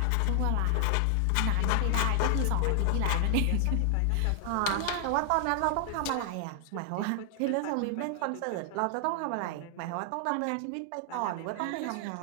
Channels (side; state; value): both; different; correlation 0.00